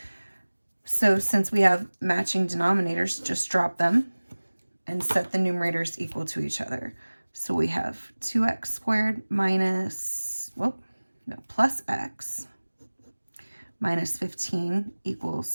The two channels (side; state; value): both; inverted; correlation -1.00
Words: so since we have matching denominators, just drop them and set the numerators equal to each other. So we have 2x squared minus, plus x minus 15